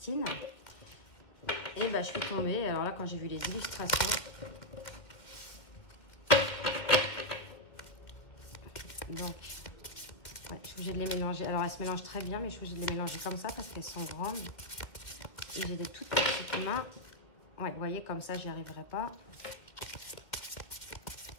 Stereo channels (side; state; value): right; late; 2.1 ms